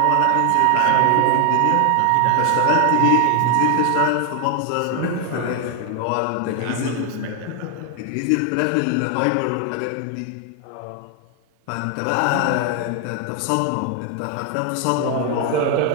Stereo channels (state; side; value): different; both; correlation 0.00